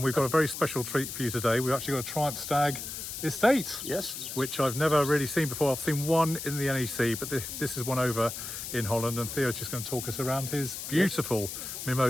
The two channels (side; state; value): left; noise; hiss, 7 dB below the sound